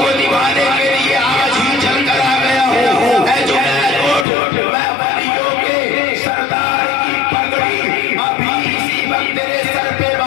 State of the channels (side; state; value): right; drops out; at 4.2 s